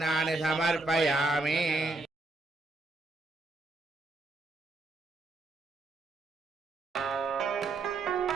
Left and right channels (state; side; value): quieter; left; 3.2 dB